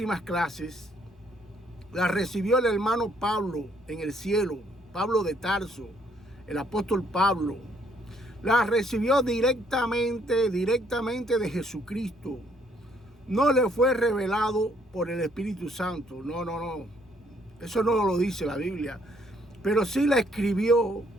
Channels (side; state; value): both; normal; correlation 0.67